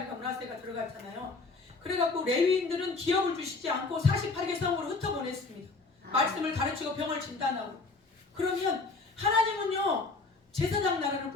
므낫세가 들어갔잖아요. 그래갖고 레위인들은 기업을 주시지 않고 48개 성으로 흩어보냈습니다. 말씀을 가르치고 병을 진단하고. 그러면 하나님은요 제사장 나라를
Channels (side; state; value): right; quieter; 3.8 dB